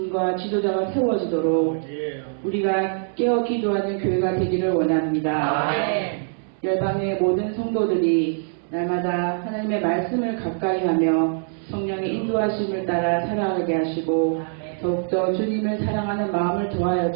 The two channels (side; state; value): left; silent; 63 dB below the other